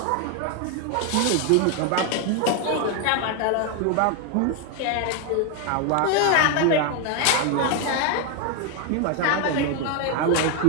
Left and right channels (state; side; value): different; both; correlation 0.01